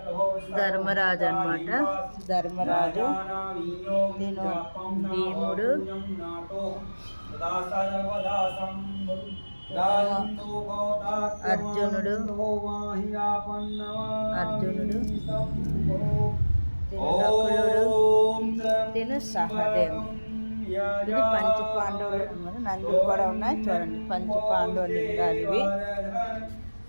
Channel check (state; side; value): inverted; both; correlation -1.00